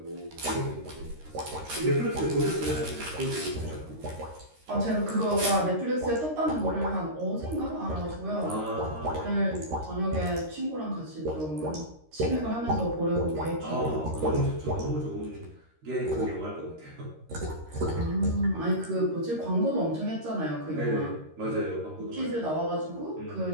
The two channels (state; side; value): late; left; 13 ms